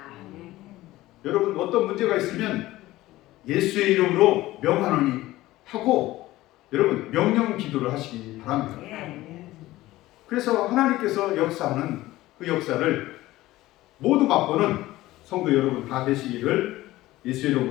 여러분 어떤 문제가 있으면 예수의 이름으로 명하노니 하고 여러분 명령 기도를 하시기 바랍니다. 그래서 하나님께서 역사하는 그 역사를 모두 맛보는 성도 여러분 다 되시기를 예수의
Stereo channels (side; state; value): right; quieter; 17.0 dB